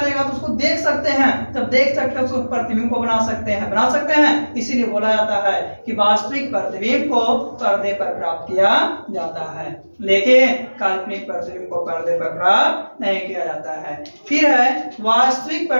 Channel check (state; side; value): inverted; both; correlation -1.00